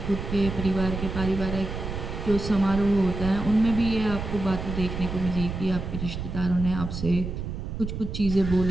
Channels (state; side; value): noise; right; rumble, 6 dB below the sound